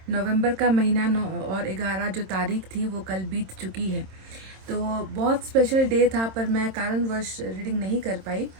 नवंबर का महीना और 11 जो तारीख थी वो कल बीत चुकी है। तो बहुत स्पेशल डे था, पर मैं कारणवश रीडिंग नहीं कर पाई।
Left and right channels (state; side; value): late; left; 26 ms